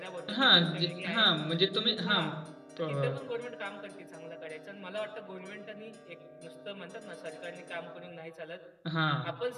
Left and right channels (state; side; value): identical; both; correlation 1.00